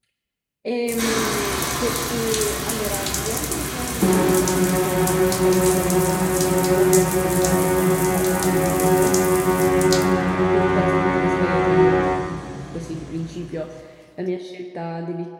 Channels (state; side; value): identical; both; correlation 1.00